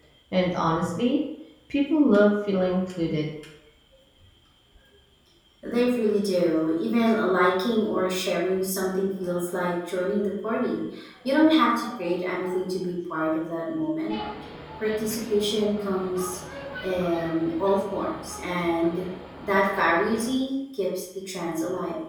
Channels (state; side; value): identical; both; correlation 1.00